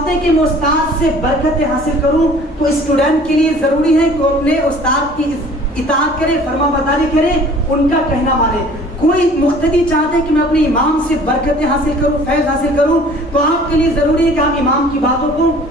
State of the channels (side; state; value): both; normal; correlation 0.50